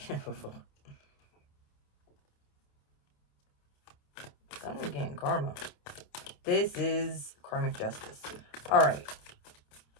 Someone getting karma. This is karmic justice. All right.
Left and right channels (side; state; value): right; late; 28 ms